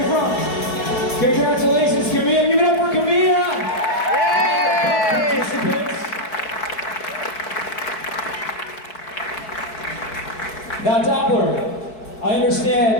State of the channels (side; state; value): right; late; 4.6 ms